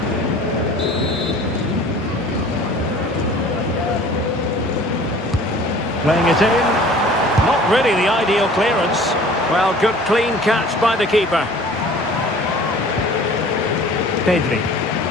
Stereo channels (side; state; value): both; normal; correlation 0.47